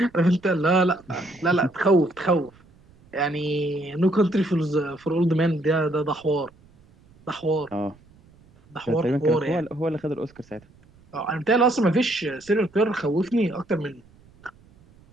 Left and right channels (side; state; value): right; noise; rumble, 28 dB below the sound